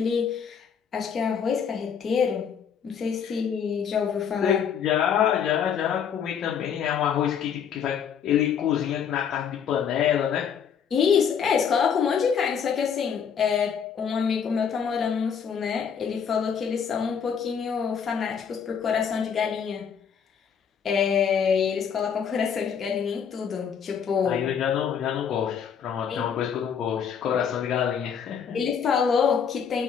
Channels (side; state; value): right; quieter; 7.4 dB